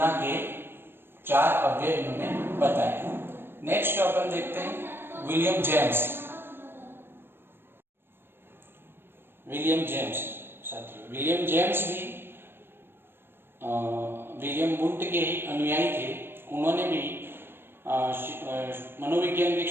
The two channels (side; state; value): left; late; 0.10 ms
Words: के 4 अव्यय इन्होंने बताए। नेक्स्ट अपन देखते हैं विलियम जेम्स। विलियम जेम्स साथियों, विलियम जेम्स भी विलियम वुंड के ही अनुयायी थे। उन्होंने भी मनोविज्ञान के